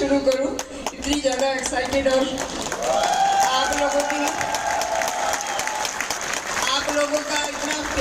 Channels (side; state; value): both; identical; correlation 1.00